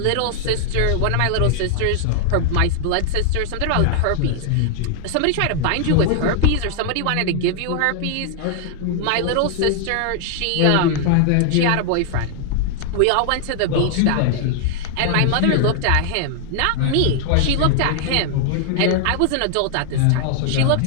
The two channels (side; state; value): both; different; correlation -0.01